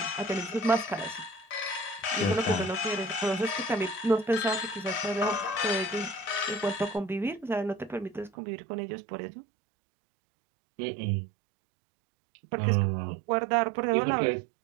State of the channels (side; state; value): left; drops out; at 8.3 s